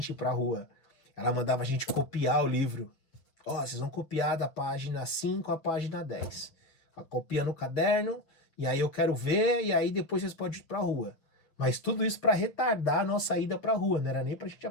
ir pra rua? Ela mandava a gente copiar o livro. Ó, vocês vão copiar da página 5 à página 10. Copia no caderno, e aí eu quero ver, e aí depois vocês podem ir pra rua. Mas tudo isso para retardar a nossa ida pra rua, não era nem pra gente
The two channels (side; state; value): right; late; 7.0 ms